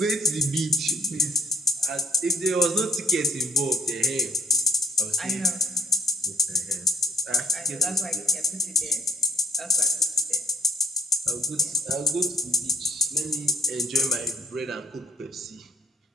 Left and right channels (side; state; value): both; normal; correlation 0.64